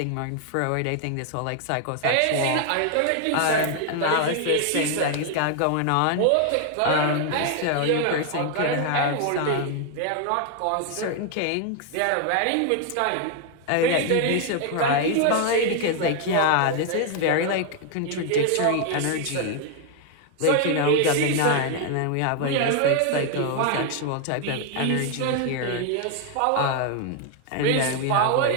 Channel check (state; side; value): different; both; correlation 0.00